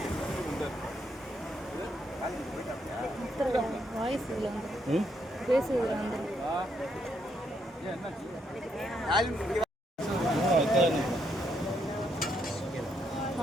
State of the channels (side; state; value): both; normal; correlation 0.76